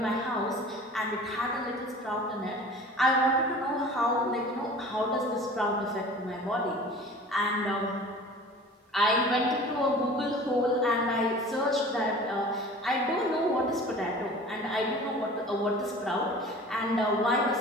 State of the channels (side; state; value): both; normal; correlation 0.42